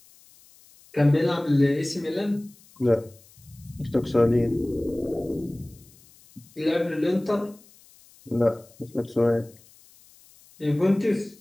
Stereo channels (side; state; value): left; noise; hiss, 27 dB below the sound